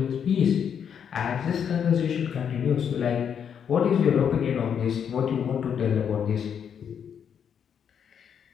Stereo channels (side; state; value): right; quieter; 7.9 dB